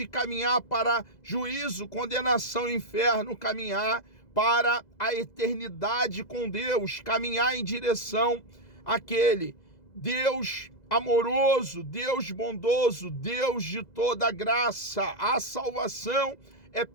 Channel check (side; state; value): right; late; 2.0 ms